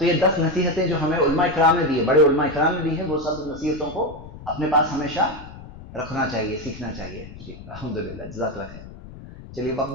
یہ 10 نصیحتیں جو ہمیں علماء اکرام نے دی ہے، بڑے علماء اکرام نے دی ہے، وہ سب نصیحتوں کو اپنے پاس ہمیشہ رکھنا چاہیے، سیکھنا چاہیے. جی الحمدللہ، جزاک اللہ خیر. چلیے، وقت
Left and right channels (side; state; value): left; noise; rumble, 16 dB below the sound